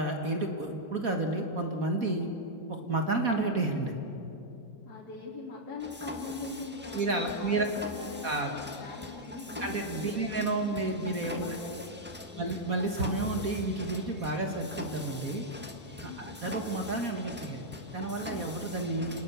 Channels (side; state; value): both; normal; correlation -0.05